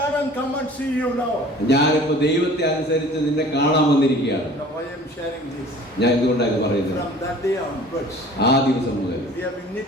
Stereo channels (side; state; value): both; normal; correlation 0.47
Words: and come and see you now. ഞാനിപ്പോ ദൈവത്തെ അനുസരിച്ച് നിന്നെ കാണാൻ വന്നിരിക്കുകയാണ്. Now I am sharing this. ഞാൻ എന്തുകൊണ്ടാണ് പറയുന്നത്? From that day onwards, ആ ദിവസം മുതൽ we have been